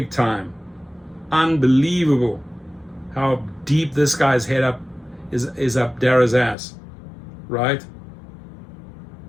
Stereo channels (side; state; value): right; drops out; at 6.6 s